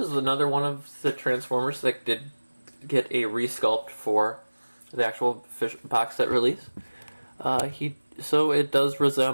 another one of the Transformers that did get a resculpt for the actual box set release. So it does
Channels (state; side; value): inverted; both; correlation -1.00